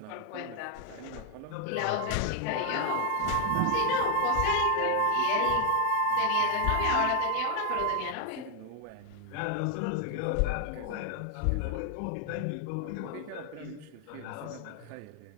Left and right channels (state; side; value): different; both; correlation 0.00